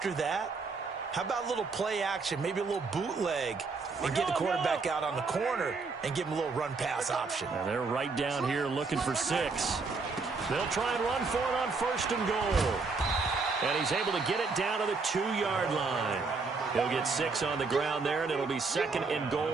that, how about a little play action, maybe a little bootleg, and get the quarterback out on the corner and give him a little run-pass option. And they're right down here looking for 6. They'll try and run for it on 1st and goal. And he's able to get it down to the 2-yard line. He'll get 6 on the ground there, and it'll be 2nd and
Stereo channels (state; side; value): quieter; left; 4.3 dB